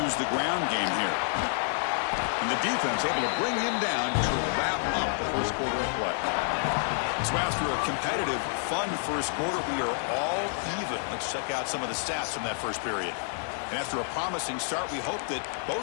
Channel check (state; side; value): silent; right; digital silence